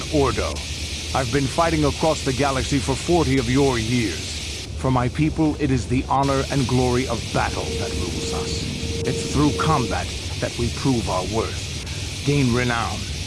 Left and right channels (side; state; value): both; identical; correlation 1.00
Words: Ordo. I've been fighting across the galaxy for 40 of your years. For my people, it is the honor and glory of battle that rules us. It's through combat that we prove our worth, gain renown,